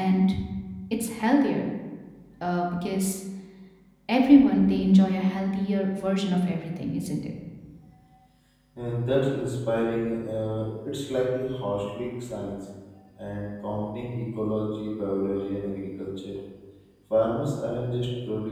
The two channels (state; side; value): identical; both; correlation 1.00